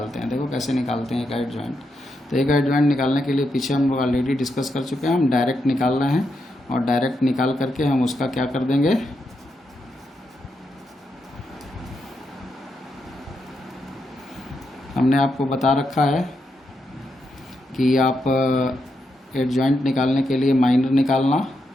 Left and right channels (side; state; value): both; normal; correlation 0.83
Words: हैं, देखो कैसे निकालते हैं A का एडजॉइंट। तो A का एडजॉइंट निकालने के लिए पीछे हम लोग ऑलरेडी डिस्कस कर चुके हैं, हम डायरेक्ट निकाल रहे हैं। और डायरेक्ट निकाल करके हम उसका क्या कर देंगे? हमने आपको बता रखा है कि आप एडजॉइंट निकालने के लिए माइनर निकालना,